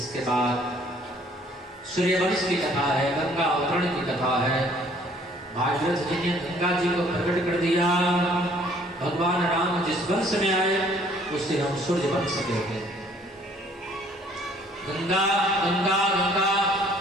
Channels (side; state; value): both; normal; correlation 0.59